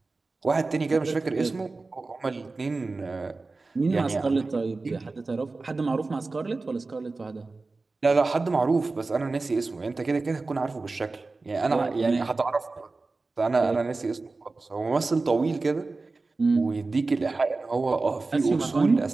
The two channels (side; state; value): left; quieter; 3.6 dB